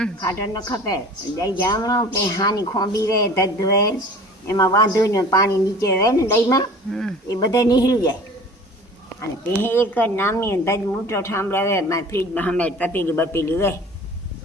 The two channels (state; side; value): normal; both; correlation 0.44